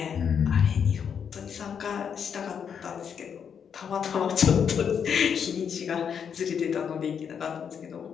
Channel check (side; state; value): right; quieter; 7.4 dB